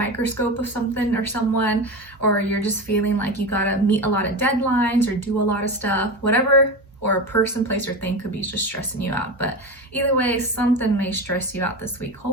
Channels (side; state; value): both; normal; correlation 0.23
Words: of something or someone, or you're just feeling like you gotta meet a lot of deadlines or do a lot of stuff, whatever, or a person, place, or thing could be just stressing you out. But either way, something may stress you out this week.